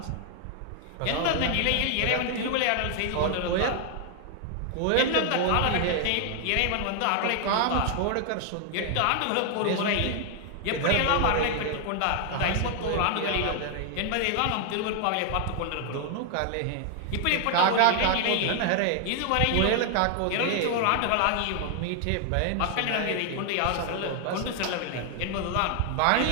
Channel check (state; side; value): different; both; correlation 0.00